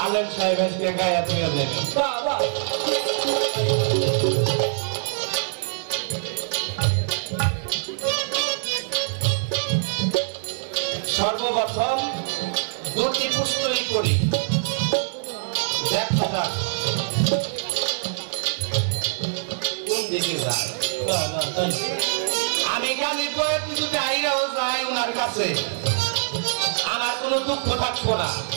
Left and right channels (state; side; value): silent; left; 63 dB below the other